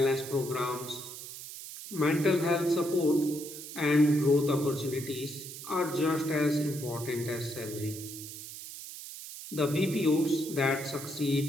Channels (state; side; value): noise; right; hiss, 11 dB below the sound